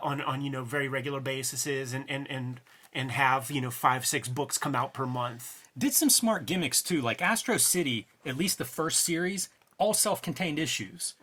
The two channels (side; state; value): both; identical; correlation 1.00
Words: very regular bases and have 5-6 books come out per month. Did some smart gimmicks too, like Astro City. At least the first series, all self-contained issues,